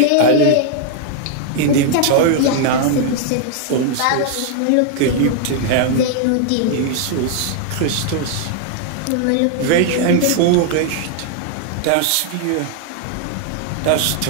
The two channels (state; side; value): different; both; correlation 0.00